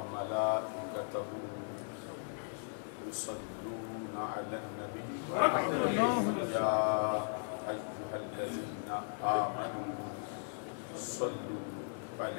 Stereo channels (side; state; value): right; silent; digital silence